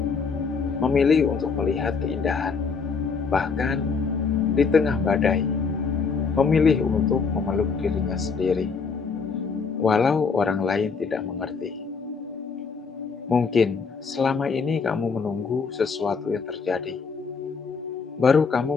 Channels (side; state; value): right; quieter; 5.2 dB